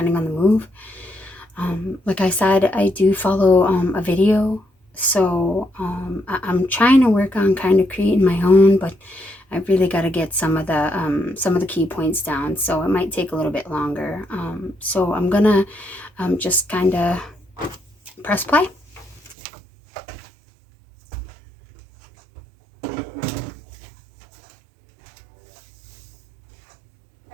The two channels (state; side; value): drops out; left; at 19.4 s